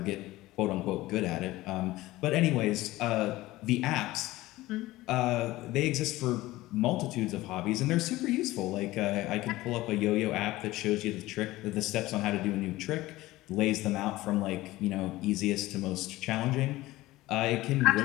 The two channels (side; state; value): right; quieter; 17.9 dB